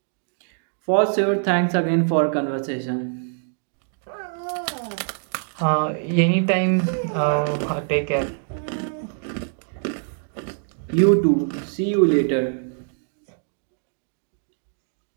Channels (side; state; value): left; silent; digital silence